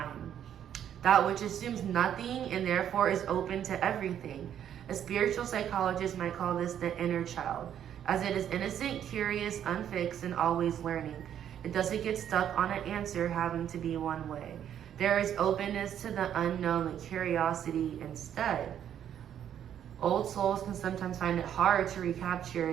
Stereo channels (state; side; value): quieter; left; 9.8 dB